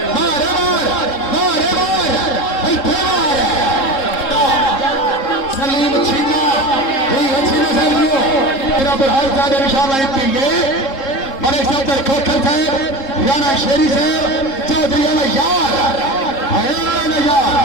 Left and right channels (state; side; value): late; right; 3.7 ms